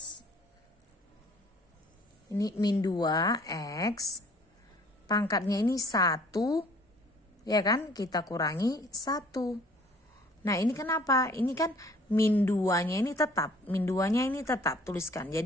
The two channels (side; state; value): both; normal; correlation 0.55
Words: ini min 2 x pangkatnya ini 1 ya kan, kita kurangi 1. Nah ini kenapa? Ini kan min 2-nya ini tetap, min 2-nya ini tetap tuliskan.